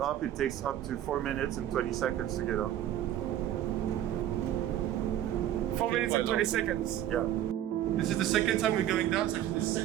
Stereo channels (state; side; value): quieter; left; 11.9 dB